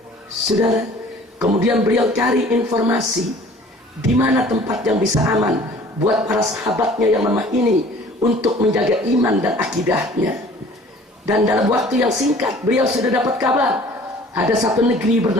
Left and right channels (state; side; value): normal; both; correlation 0.50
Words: saudara. Kemudian beliau cari informasi di mana tempat yang bisa aman buat para sahabatnya yang lemah ini untuk menjaga iman dan akidahnya. Dan dalam waktu yang singkat beliau sudah dapat kabar ada satu negeri